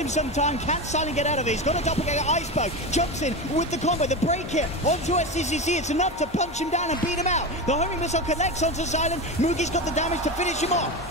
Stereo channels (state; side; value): normal; both; correlation 0.21